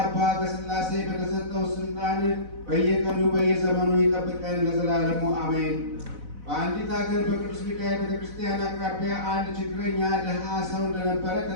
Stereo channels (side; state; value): left; late; 4.0 ms